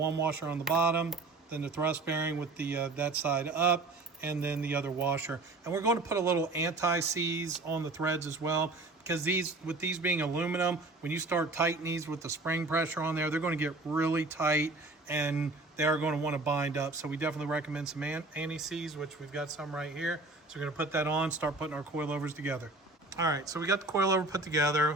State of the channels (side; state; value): left; quieter; 3.2 dB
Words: washer on the bottom, then the thrust bearing with the that side up, and then the other washer. And we're going to put a little anti-seize on the threads as well, because with these being aluminum, when you start tightening these with the spring pressure on there, they're going to get really tight and they are going to want to bind up. So we definitely recommend some anti-seize, which we've got some right here. So we're going to put that on, start putting our coilovers together. All right, so we got the coilover put